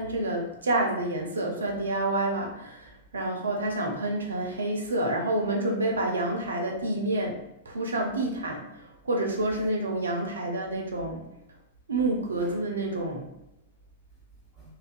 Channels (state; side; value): inverted; both; correlation -0.41